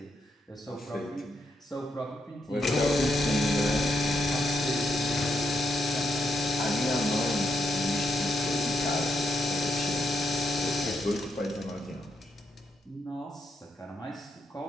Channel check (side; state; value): both; normal; correlation 0.80